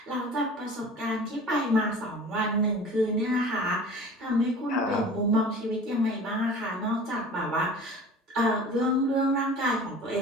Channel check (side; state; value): both; normal; correlation 0.42